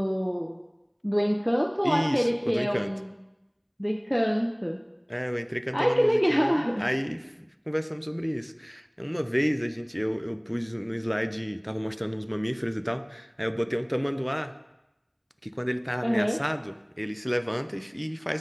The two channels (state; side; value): identical; both; correlation 1.00